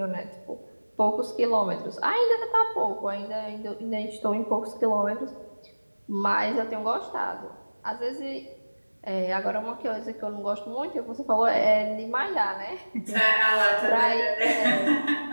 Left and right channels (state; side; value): inverted; both; correlation -1.00